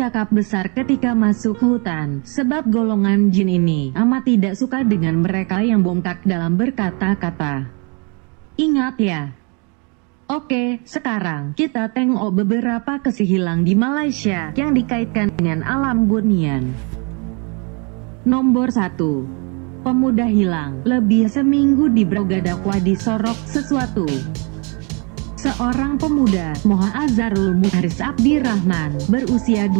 besar ketika masuk hutan, sebab golongan jin ini amat tidak suka dengan mereka yang bongkak dalam berkata-kata. Ingat ya. Oke, sekarang kita tengok beberapa kisah hilang di Malaysia yang dikaitkan dengan alam bunian. Nomor 1. Pemuda hilang lebih seminggu di Brogadakwa disorok sesuatu. Seorang pemuda, Azharul Muharis Abdirrahman, berusia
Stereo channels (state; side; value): quieter; left; 33.8 dB